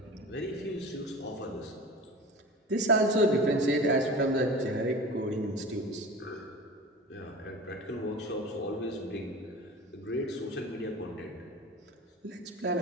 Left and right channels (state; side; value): normal; both; correlation 0.35